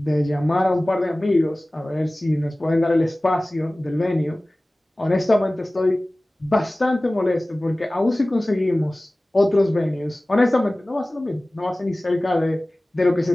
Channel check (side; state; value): both; normal; correlation 0.98